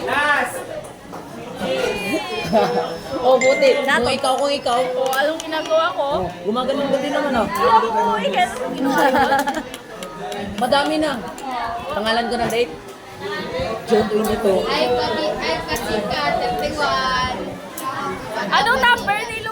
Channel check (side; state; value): both; identical; correlation 1.00